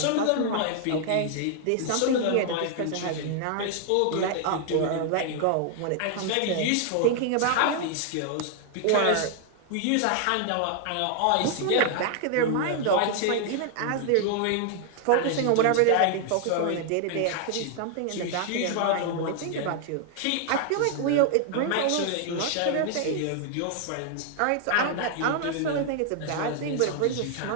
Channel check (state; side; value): different; both; correlation 0.00